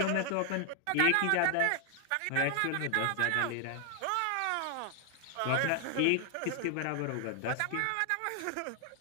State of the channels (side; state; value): both; different; correlation 0.00